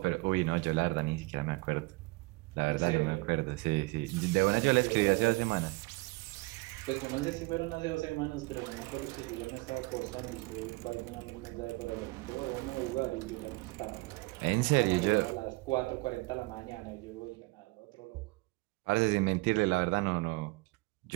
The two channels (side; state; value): left; quieter; 24.2 dB